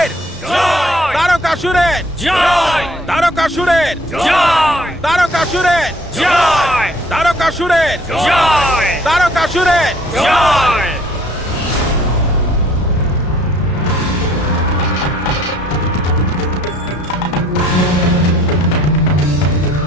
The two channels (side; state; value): both; normal; correlation 0.58